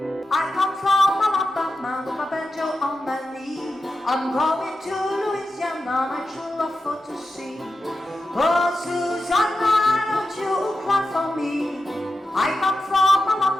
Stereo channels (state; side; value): normal; both; correlation 0.91